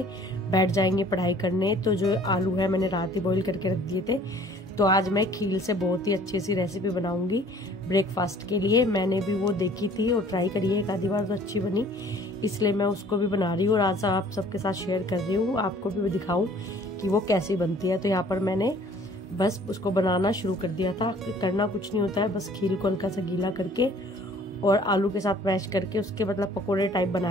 बैठ जाएंगे पढ़ाई करने। तो जो आलू है मैंने रात ही बॉईल करके रख दिए थे, तो आज मैं खील से बहुत ही अच्छी सी रेसिपी बनाऊंगी ब्रेकफास्ट के लिए। मैंने भी वो देखी थी और ट्राई करी है एक आधी बार, तो अच्छी बनी, इसलिए मैं उसको भी बना रही हूँ और आज आप सबके साथ शेयर कर रही हूँ, आपको भी दिखाऊं कि वो कैसी बनती है। तो यहाँ पर मैंने बस उसको बनाना शुरू कर दिया था। करना कुछ नहीं होता है, बस खील को हल्का सा गीला करके और आलू के साथ मैश करके उसके मतलब पकोड़े टाइप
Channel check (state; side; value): normal; both; correlation 0.53